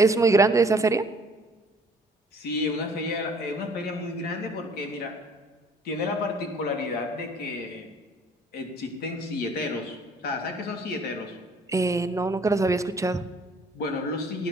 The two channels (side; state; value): both; normal; correlation 0.56